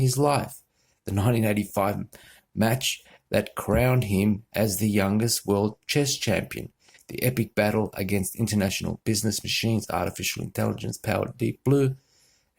life. The 1985 match that crowned him as the youngest world chess champion, the epic battle against international business machines, artificial intelligence-powered Deep Blue,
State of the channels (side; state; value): both; identical; correlation 1.00